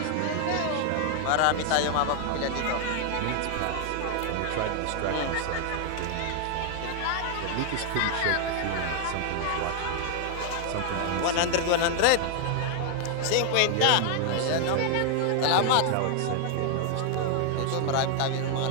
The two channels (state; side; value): different; both; correlation 0.00